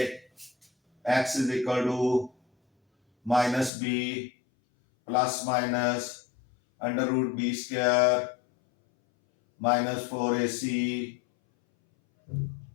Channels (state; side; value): drops out; right; at 3.7 s